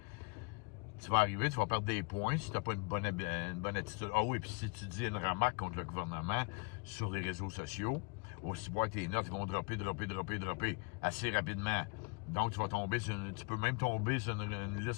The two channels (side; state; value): right; quieter; 32.6 dB